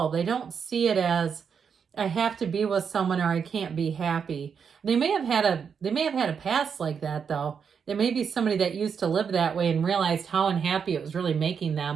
They don't see it as I have to be with someone or I can't be happy. They may have had a past like that though. There may be somebody that used to live that way and realized how unhappy it was really making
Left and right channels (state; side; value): quieter; left; 6.7 dB